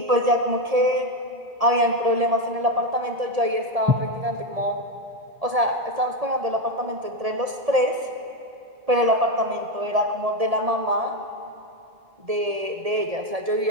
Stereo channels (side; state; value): left; late; 1.7 ms